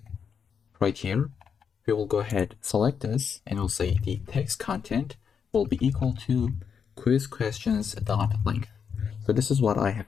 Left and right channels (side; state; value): right; quieter; 6.8 dB